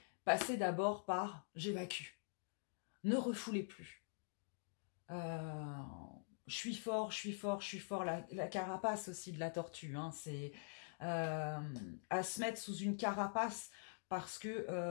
passez d'abord par « j'évacue ». Ne refoulez plus. Je suis fort, je suis fort, je suis fort. La carapace aussi de la tortue, hein, c'est à se mettre sous une carapace parce que...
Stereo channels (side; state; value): right; silent; digital silence